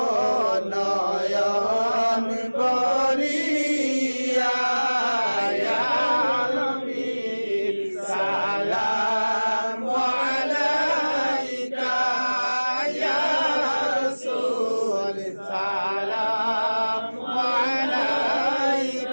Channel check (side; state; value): both; inverted; correlation -1.00